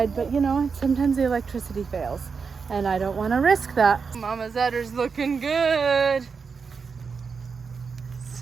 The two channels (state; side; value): quieter; left; 5.4 dB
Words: but you know, sometimes the electricity fails and I don't want to risk that. Mama's udder's looking good.